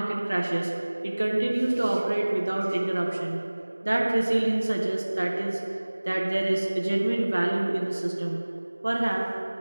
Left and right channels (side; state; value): both; inverted; correlation -1.00